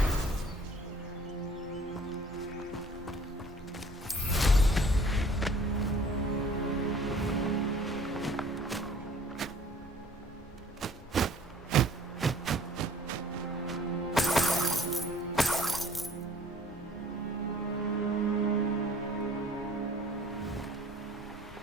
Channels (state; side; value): normal; both; correlation 0.51